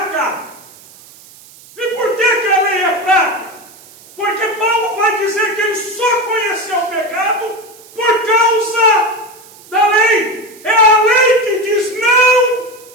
E por que a lei é fraca? Porque Paulo vai dizer que ele só conheceu o pecado por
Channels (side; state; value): right; noise; hiss, 23 dB below the sound